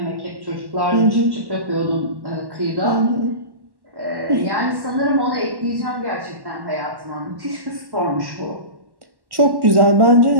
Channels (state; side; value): late; left; 1.1 ms